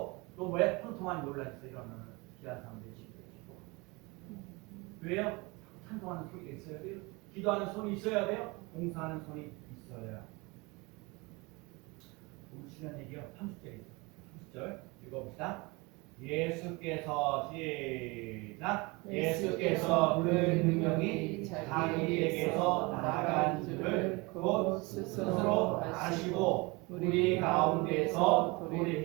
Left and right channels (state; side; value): quieter; left; 25.9 dB